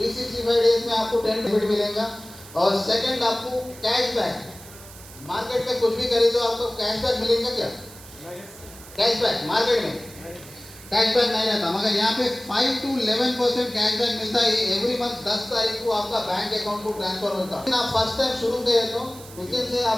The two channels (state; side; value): noise; right; hiss, 18 dB below the sound